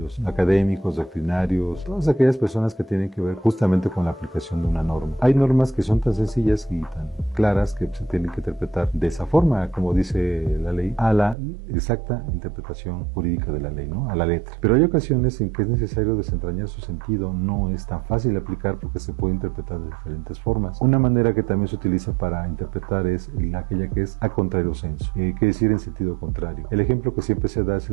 académicos, doctrinarios, todas aquellas personas que tienen que ver justamente con la aplicación de una norma. Hay normas que son tan sencillas y tan claras que se tienen que interpretar de esa forma, como dice la ley, a la exacta interpretación jurídica de la ley, ¿no? A la letra. Pero hay ocasiones en que es necesario desentrañar su sentido, no es tan fácil aplicar porque se puede interpretar de diferentes formas. Una manera que también se utiliza para interpretar es aquella que es a contrario sensu, quiere decir en sentido contrario. El ejemplo que siempre se da es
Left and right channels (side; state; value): left; drops out; at 11.4 s